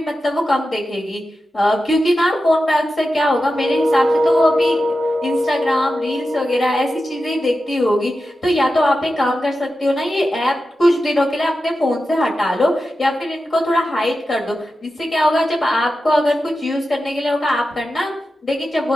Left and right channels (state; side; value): normal; both; correlation 0.92